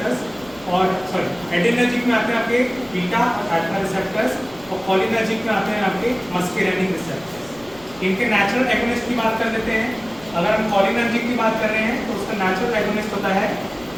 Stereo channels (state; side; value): noise; left; rumble, 24 dB below the sound